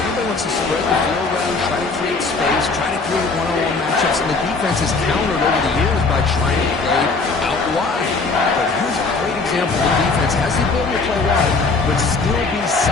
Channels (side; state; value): right; quieter; 4.0 dB